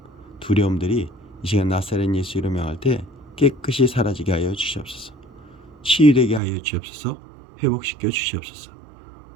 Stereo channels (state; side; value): drops out; left; at 6.4 s